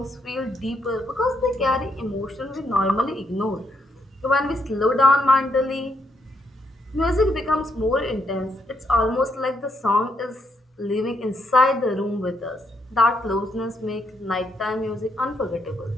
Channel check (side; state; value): both; normal; correlation 0.77